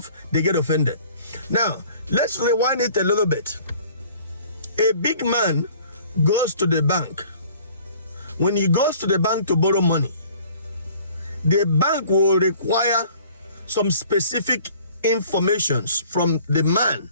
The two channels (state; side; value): inverted; both; correlation -0.52